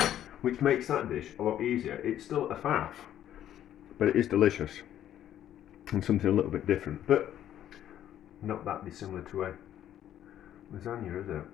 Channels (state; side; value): quieter; right; 11.3 dB